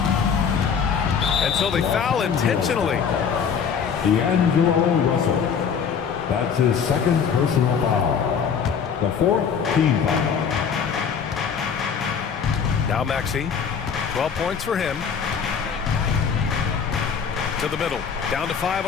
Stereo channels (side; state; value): right; quieter; 6.8 dB